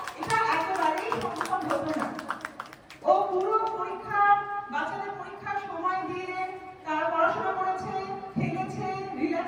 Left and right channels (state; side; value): identical; both; correlation 1.00